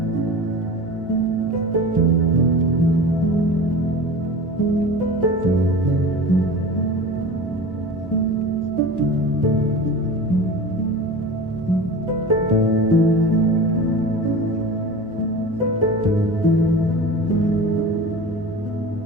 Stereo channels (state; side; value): normal; both; correlation 0.34